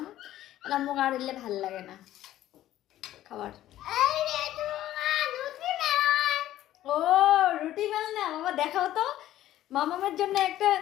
এটা মুখ আর এলে ভাল লাগে না খাবার। ও রুটি বেলনা, বাবা দেখাও তো। মামামের জন্য একটা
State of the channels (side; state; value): right; quieter; 13.5 dB